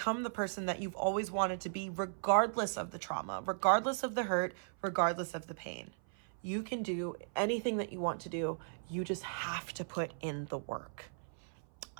the person that you've always wanted to be, regardless of the trauma, regardless of the hurt, regardless of the pain. You can do anything that you want to do. You just have to put in the work.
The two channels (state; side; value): silent; left; 53 dB below the other